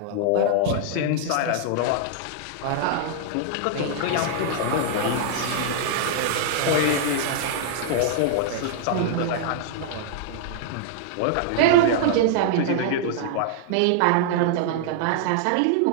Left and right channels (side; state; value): both; different; correlation -0.01